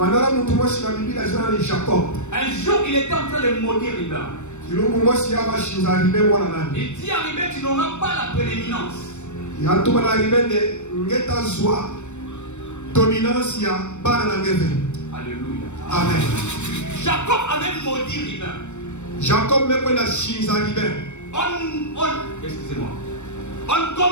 Un jour, il était en train de maudire Riba. Il dit à Riba, tu n'auras pas la prééminence. Alléluia. Amen. Jacob avait maudit Riba. Excusez-moi. On ne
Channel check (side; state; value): right; late; 0.84 ms